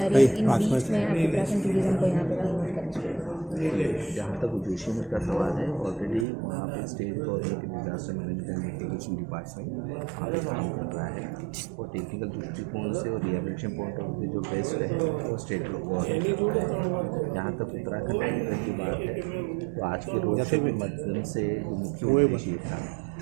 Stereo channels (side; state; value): left; drops out; at 6.2 s